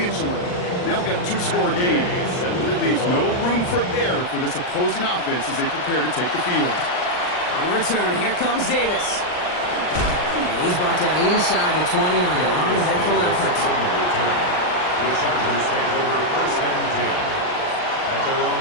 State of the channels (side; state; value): right; late; 39 ms